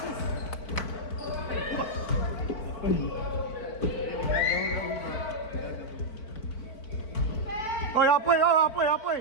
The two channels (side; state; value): right; late; 4.5 ms